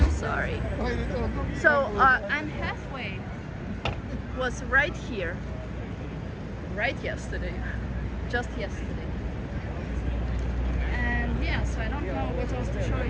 sorry. So Anne Hathaway was right here, right yesterday, just yesterday. And yeah, so I don't know what else to show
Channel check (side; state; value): both; identical; correlation 1.00